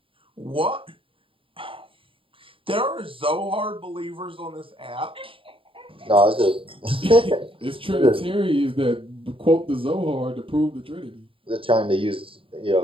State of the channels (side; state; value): left; late; 0.26 ms